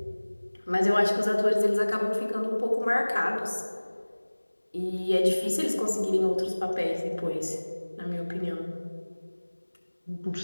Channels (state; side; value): inverted; both; correlation -1.00